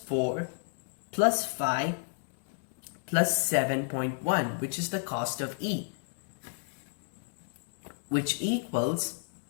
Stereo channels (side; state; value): right; silent; digital silence